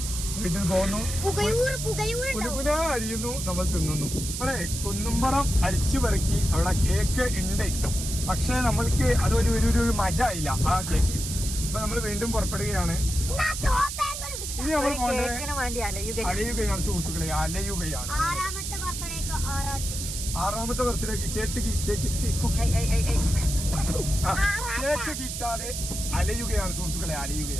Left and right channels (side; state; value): right; noise; hiss, 6 dB below the sound